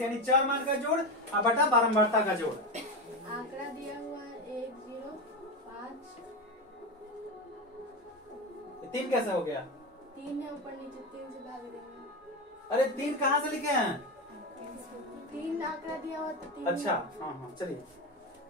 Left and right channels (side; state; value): both; normal; correlation 0.17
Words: यानी चर मान का जोड़ और बटा बारंबारता का जोड़। आंकड़ा दिया हुआ है 1 0 5। 3 कैसे हो गया? 3 है ऊपर नीचे, 3 से भाग देंगे। अरे 3 कहाँ से लिखे हैं? 3 आंकड़ा दिया हुआ तो 3। अच्छा, हाँ हाँ, चलिए।